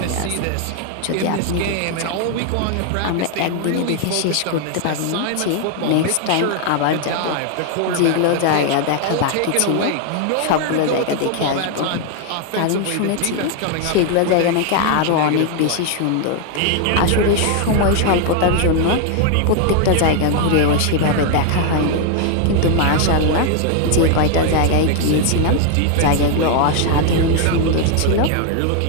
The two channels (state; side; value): different; both; correlation 0.00